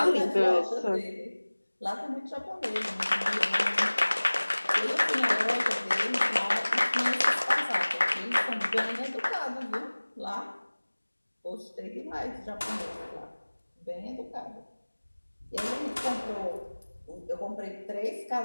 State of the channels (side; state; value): both; inverted; correlation -1.00